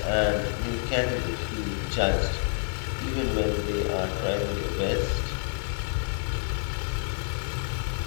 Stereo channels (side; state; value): right; silent; digital silence